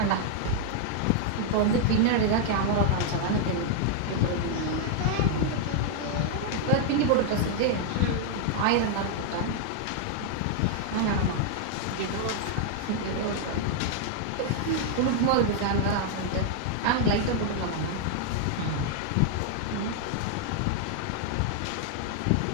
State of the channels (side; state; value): both; different; correlation 0.00